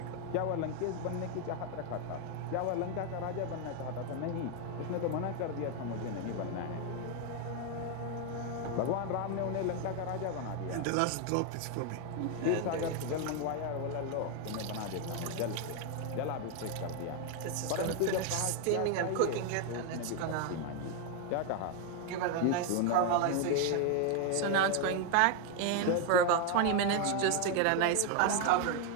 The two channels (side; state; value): both; different; correlation 0.01